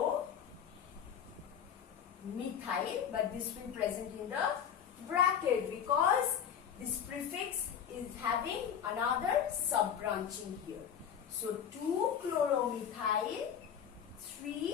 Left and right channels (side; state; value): right; quieter; 8.4 dB